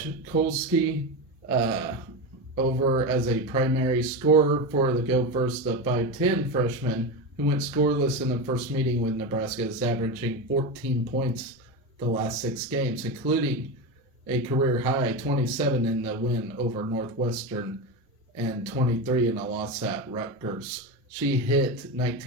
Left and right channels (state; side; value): normal; both; correlation 0.18